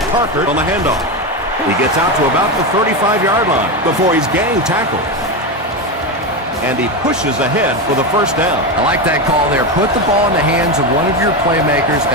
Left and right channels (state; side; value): normal; both; correlation 0.14